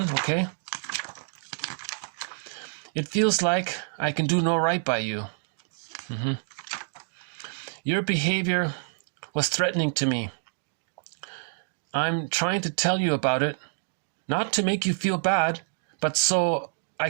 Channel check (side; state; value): left; silent; digital silence